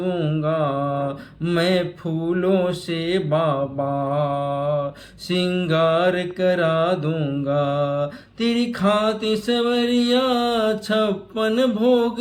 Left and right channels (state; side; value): identical; both; correlation 1.00